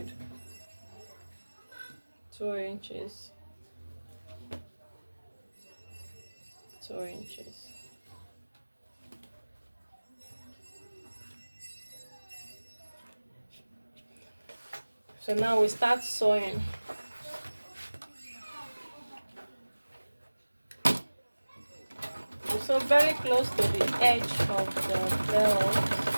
2 inches. 2 inches. So now we start sewing. We sew very close to the edge of the belt.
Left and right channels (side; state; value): both; inverted; correlation -1.00